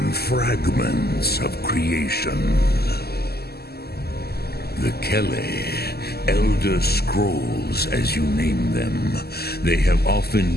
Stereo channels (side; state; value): right; late; 0.46 ms